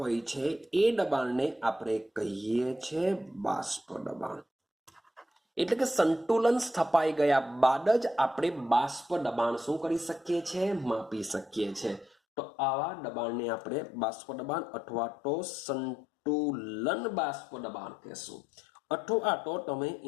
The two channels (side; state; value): right; drops out; at 12.1 s